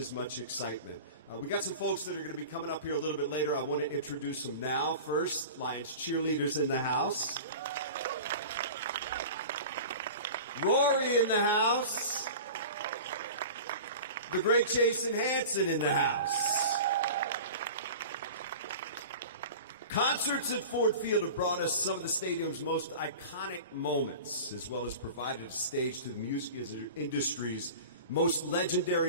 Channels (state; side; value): inverted; both; correlation -0.36